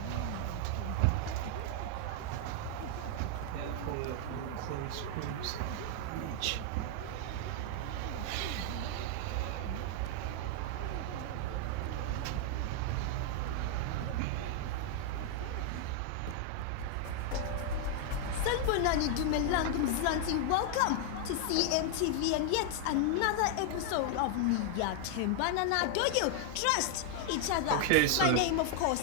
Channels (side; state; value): both; different; correlation 0.00